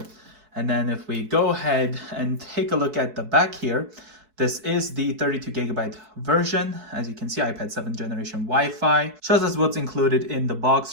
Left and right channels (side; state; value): left; late; 4.7 ms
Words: And then if we go ahead and take a look at the back here, this is the 32 gigabyte version. As you can see, iPad 7th generation Wi-Fi. Shows us what's included in the